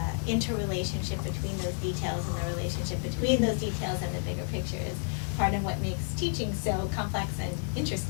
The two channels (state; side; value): silent; right; 57 dB below the other